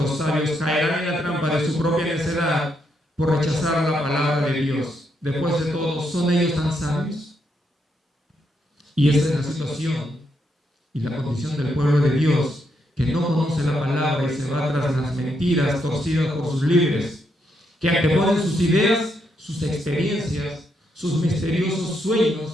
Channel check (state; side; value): normal; both; correlation 0.78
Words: sabios caerán en la trampa de su propia necedad por rechazar la palabra de Dios. Después de todo, ¿son ellos tan sabios? Y esa es la situación y la condición del pueblo de Dios, que no conoce la palabra y se va tras las mentiras torcidas por sus líderes, que anteponen sus ideas, sus experiencias, sus misteriosos